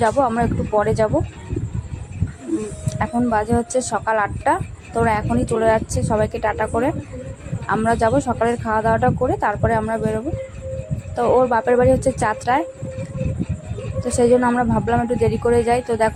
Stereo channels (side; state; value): both; identical; correlation 1.00